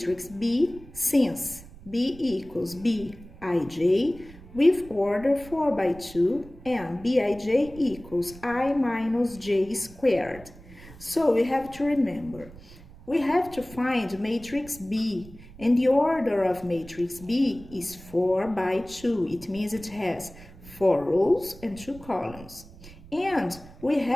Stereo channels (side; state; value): right; noise; rumble, 19 dB below the sound